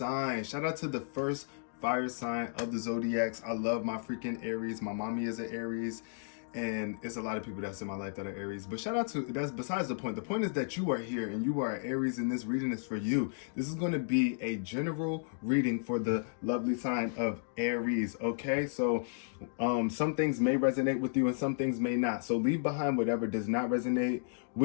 Shout out to the first fire sign of the zodiacs. I love my freaking Aries. My mommy is an Aries, and it's a lot of people that's in my life that are Aries. But shout out to, that's besides the point. The point is that you are here and you are Aries, and this reading is for you. This is going to be a general reading for the lovely sign of Aries. Okay, so some things may resonate with you and some things may not. So leave behind whatever does not resonate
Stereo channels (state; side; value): silent; right; digital silence